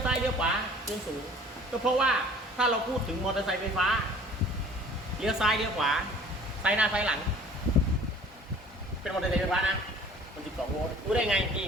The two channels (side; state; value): both; normal; correlation 0.50